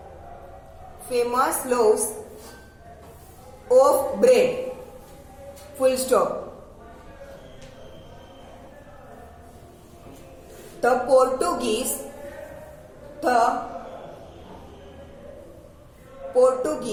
famous loaves of bread, full stop. The Portuguese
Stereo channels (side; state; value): both; identical; correlation 1.00